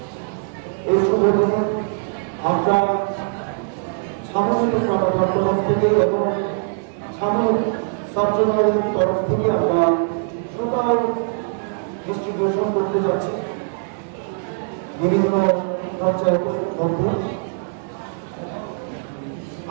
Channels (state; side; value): silent; left; 63 dB below the other